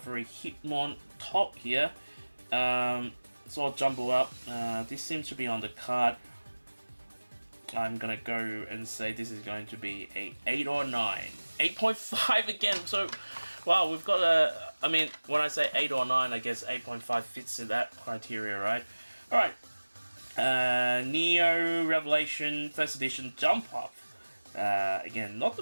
Hitmon top here. It's all jumbled up. This seems to be on the card. I'm gonna go and say this is going to be a 8 or 9. 8.5 again, so wow, we've got a, I mean, when I say 8 or 9, I guess 8.5 fits in that criteria, right? Alright, Neo Revelation First Edition Jump Up. Again, not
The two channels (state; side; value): inverted; both; correlation -1.00